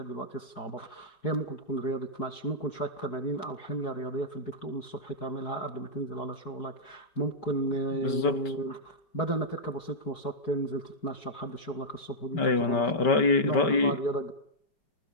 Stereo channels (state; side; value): late; right; 5.2 ms